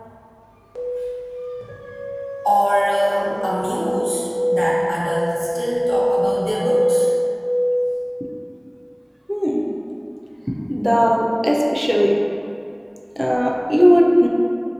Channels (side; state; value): both; identical; correlation 1.00